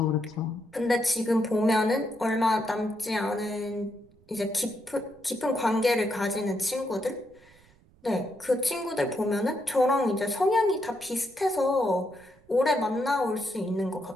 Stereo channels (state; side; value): noise; right; rumble, 29 dB below the sound